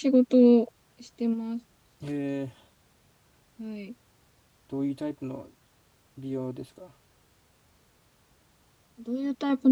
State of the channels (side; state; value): both; identical; correlation 1.00